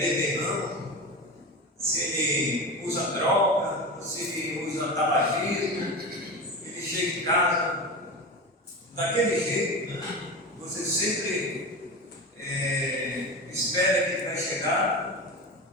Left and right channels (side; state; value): both; normal; correlation 0.25